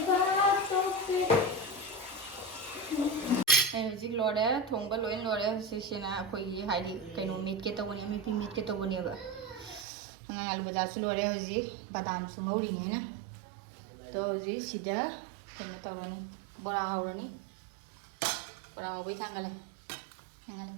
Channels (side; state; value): left; drops out; at 9.9 s